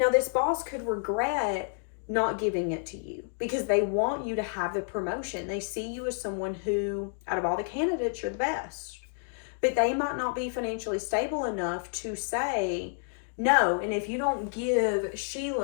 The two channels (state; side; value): silent; right; digital silence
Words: this boss could regret not giving it to you because they want you to have the promotion. They see you as someone who, out of all the candidates, you're the best. But they might not be financially stable enough to say, no, and if you don't give